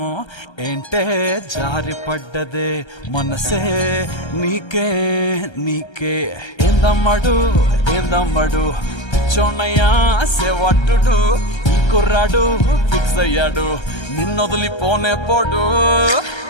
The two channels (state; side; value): late; right; 1.3 ms